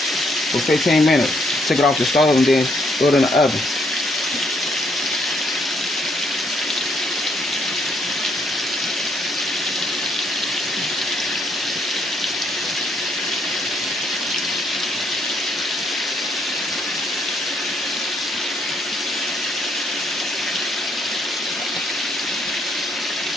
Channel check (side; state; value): both; normal; correlation 0.72